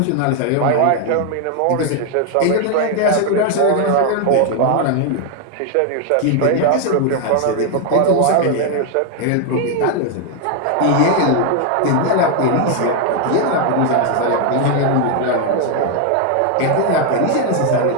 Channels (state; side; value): different; both; correlation 0.00